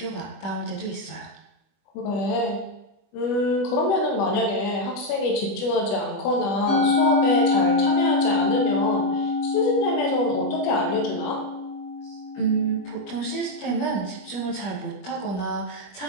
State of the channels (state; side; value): late; right; 20 ms